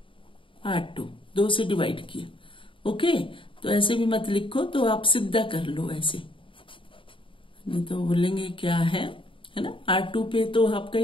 R2, 2 से डिवाइड किया, ओके। तो ऐसे भी मत लिखो, तो आप सीधा कर लो ऐसे, नहीं तो बोलेंगे क्या है ना। R2 पे तो आपका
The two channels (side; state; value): right; late; 0.25 ms